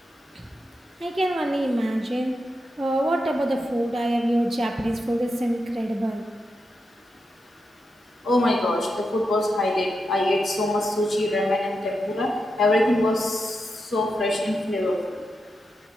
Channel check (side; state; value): both; normal; correlation 0.87